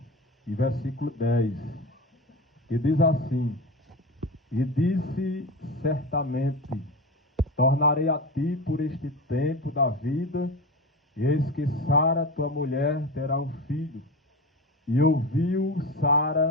e versículo 10, que diz assim: E disse certamente, tornarei a ti por este tempo da vida, e eis que Sara, tua mulher, terá um filho. E ouviu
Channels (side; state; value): both; normal; correlation 0.25